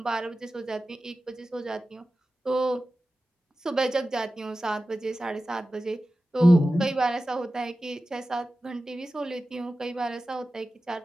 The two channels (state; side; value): normal; both; correlation 0.95